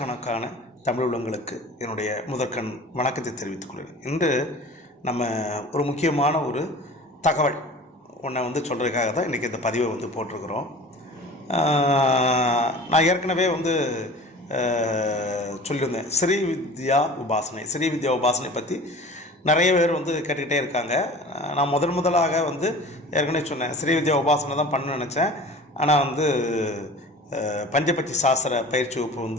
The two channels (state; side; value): normal; both; correlation 0.41